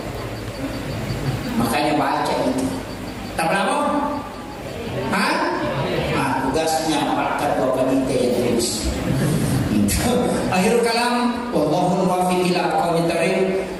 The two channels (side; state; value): both; identical; correlation 1.00